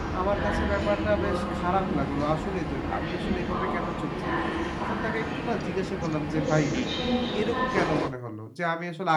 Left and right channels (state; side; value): identical; both; correlation 1.00